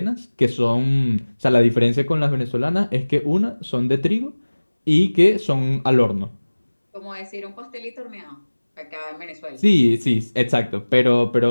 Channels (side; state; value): both; inverted; correlation -1.00